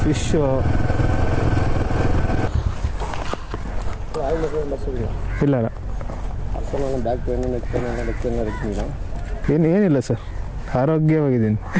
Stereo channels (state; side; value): identical; both; correlation 1.00